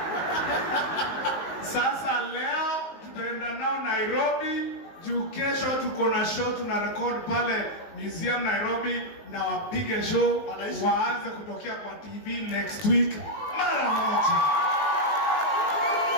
Sasa leo tutaenda nao Nairobi, juu kesho tuko na show tuna record pale Museum Nairobi na wapige show waanze kutokea kwa TV next week mara moja.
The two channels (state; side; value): late; right; 19 ms